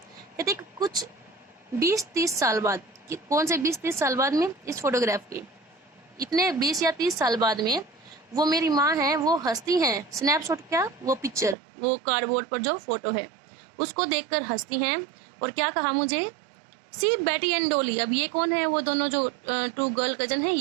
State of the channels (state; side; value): drops out; left; at 11.6 s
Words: कुछ 20-30 साल बाद, कौन से 20-30 साल बाद में, इस फोटोग्राफ के इतने 20 या 30 साल बाद में वो मेरी माँ है वो हंसती हैं। स्नैपशॉट क्या, वो पिक्चर, वो कार्डबोर्ड पर जो फोटो है उसको देखकर हंसती हैं। और क्या कहा मुझे, सी बेटी एंड डोली। अब ये कौन है, वो दोनों जो 2 गर्ल कजन है